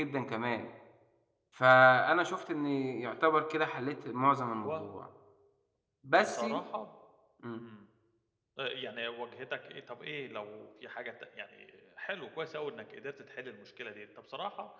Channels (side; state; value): both; identical; correlation 1.00